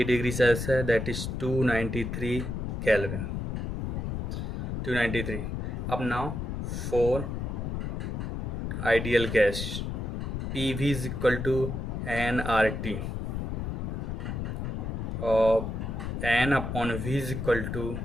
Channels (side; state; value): left; noise; rumble, 3 dB below the sound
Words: degree Celsius, that is 293 Kelvin. 293। अब now 4 ideal gas, PV is equal to nRT और n/V is equal to